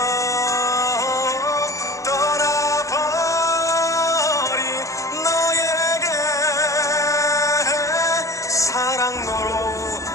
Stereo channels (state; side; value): late; right; 0.15 ms